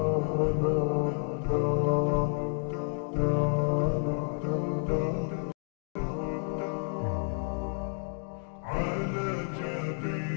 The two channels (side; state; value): right; silent; 55 dB below the other